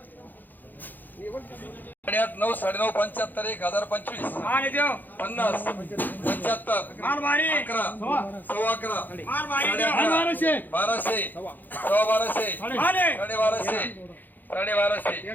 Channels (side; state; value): right; late; 0.087 ms